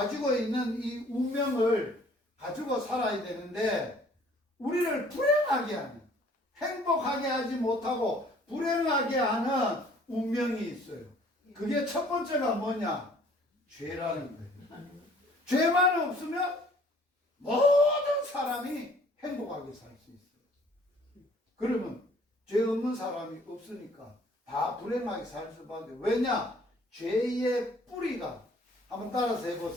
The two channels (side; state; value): both; normal; correlation 0.56